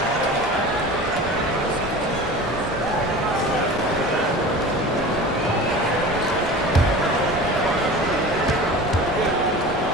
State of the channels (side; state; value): both; normal; correlation 0.36